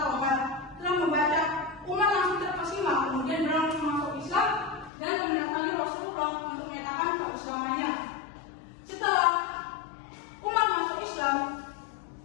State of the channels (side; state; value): right; drops out; at 4.9 s